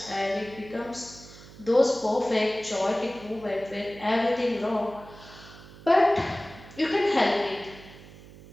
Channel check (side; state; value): right; noise; hum, 19 dB below the sound